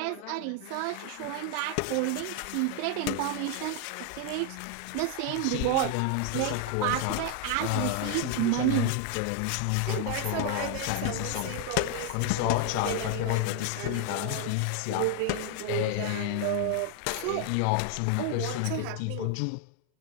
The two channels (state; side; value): different; both; correlation 0.00